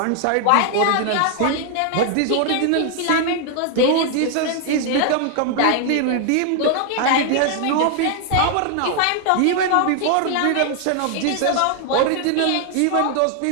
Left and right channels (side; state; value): both; different; correlation 0.00